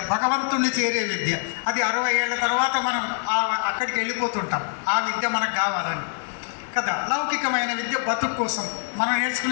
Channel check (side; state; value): right; silent; digital silence